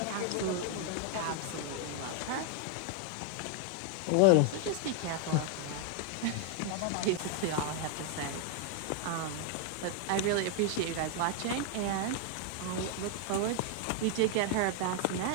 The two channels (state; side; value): different; both; correlation 0.00